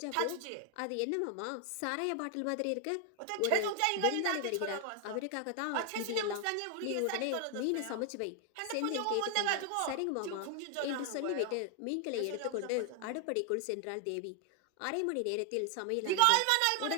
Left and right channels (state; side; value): different; both; correlation 0.00